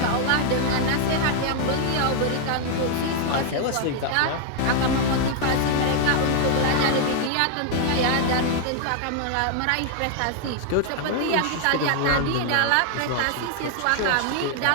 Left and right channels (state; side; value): different; both; correlation 0.00